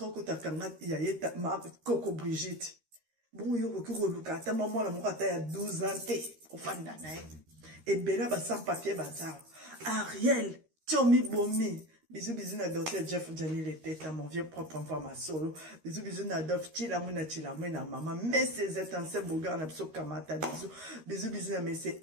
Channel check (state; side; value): late; left; 13 ms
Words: takanga ya yeta makoko Brigitte bon yo ko luka ta maman la moko ata ya 12 ans te ofanda na ye ebela ba sans papier bazar Ariel tiomi bomi Bisous, bisous, na docteur Jeff Johnny les têtes, mon vieux propre enfant, ma solo. Bisous, bisous, na dof, chilamuna, maman. Mais c'est un seul beau gars, na pso kamata, bisous. Bisous, bisous, na mais c'est